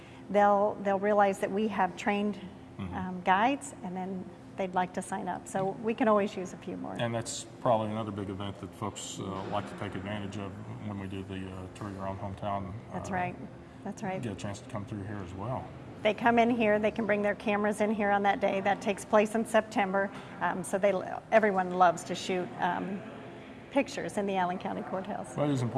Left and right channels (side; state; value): both; identical; correlation 1.00